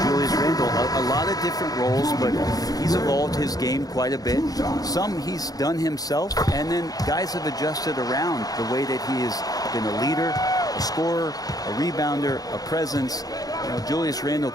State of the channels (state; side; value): late; right; 0.18 ms